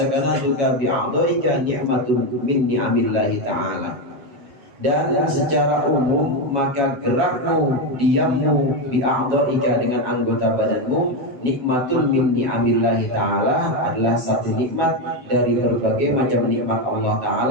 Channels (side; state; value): left; late; 7.2 ms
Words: bi a'dhaika ni'matun min ni'amillahi ta'ala. Dan secara umum maka gerakmu, diammu bi a'dhaika dengan anggota badanmu nikmatun min ni'amillahi ta'ala adalah satu nikmat dari berbagai macam nikmat Allah